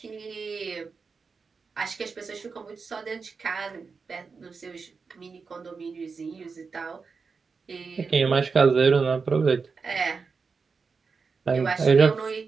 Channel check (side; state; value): left; quieter; 5.0 dB